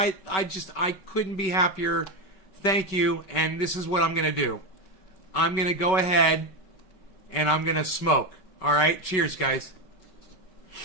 couldn't be happier. Thank you. And this is what I'm going to do. I'm going to go ahead and I'm going to smoke. All right, cheers, guys.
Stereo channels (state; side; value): late; right; 5.3 ms